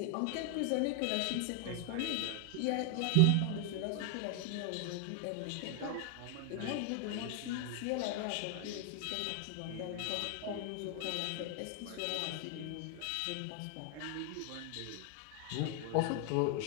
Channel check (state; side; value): different; both; correlation 0.00